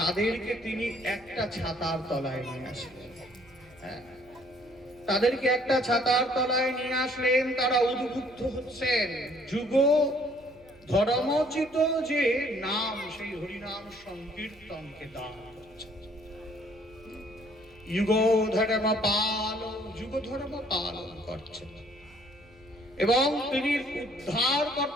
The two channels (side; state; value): right; noise; hum, 27 dB below the sound